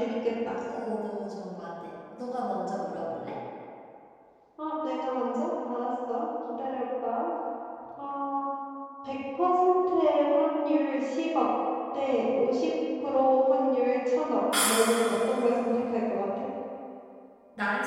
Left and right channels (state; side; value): identical; both; correlation 1.00